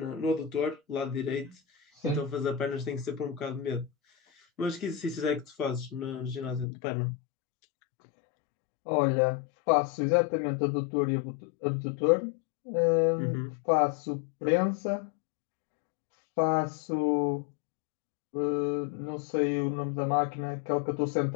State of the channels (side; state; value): right; drops out; at 6.7 s